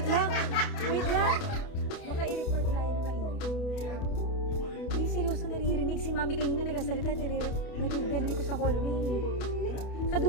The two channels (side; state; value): right; late; 28 ms